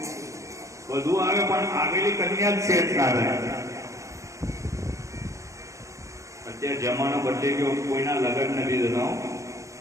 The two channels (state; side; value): late; left; 0.15 ms